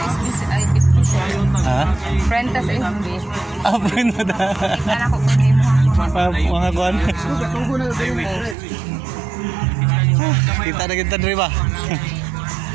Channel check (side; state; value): left; drops out; at 8.6 s